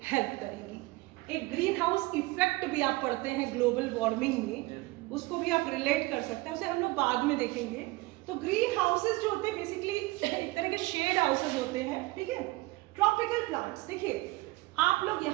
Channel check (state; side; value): quieter; left; 21.7 dB